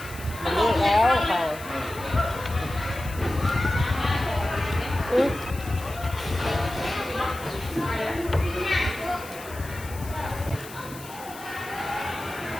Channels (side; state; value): left; noise; hiss, 16 dB below the sound